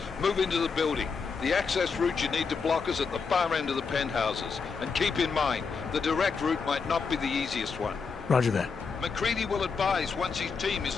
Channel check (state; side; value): quieter; right; 5.2 dB